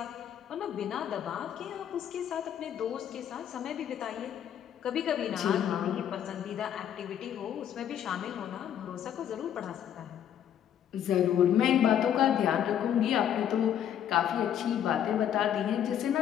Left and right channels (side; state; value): right; quieter; 9.8 dB